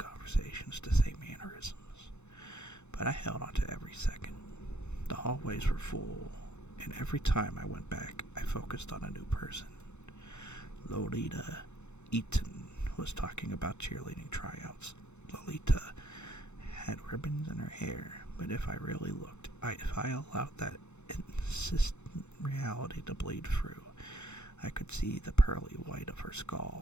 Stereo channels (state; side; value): late; right; 0.82 ms